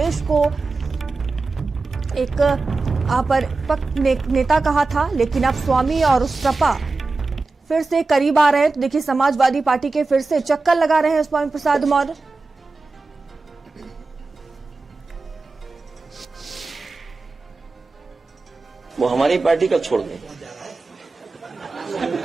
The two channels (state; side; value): quieter; left; 3.7 dB